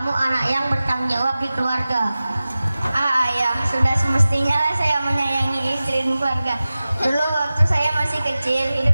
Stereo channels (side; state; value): both; inverted; correlation -0.96